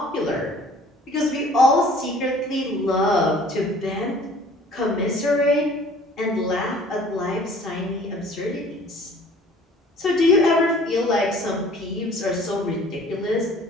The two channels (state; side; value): normal; both; correlation 0.52